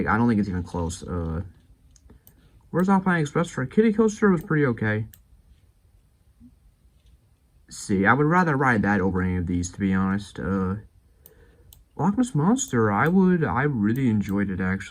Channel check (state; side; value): identical; both; correlation 1.00